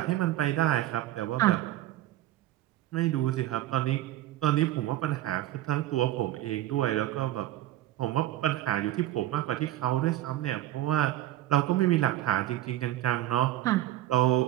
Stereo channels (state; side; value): quieter; left; 14.4 dB